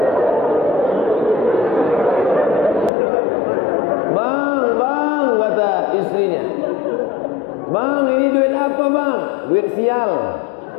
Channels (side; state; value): right; drops out; at 2.9 s